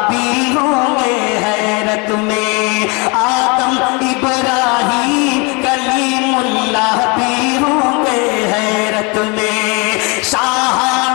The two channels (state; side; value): quieter; right; 29.8 dB